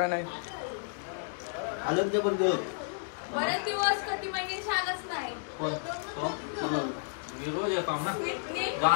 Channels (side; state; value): right; silent; digital silence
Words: आलं जबरदस्त बरेच दिवस कधी म्हणजे छानच नाही. कोण? तो? मी रोज येतो ना. स्मितनी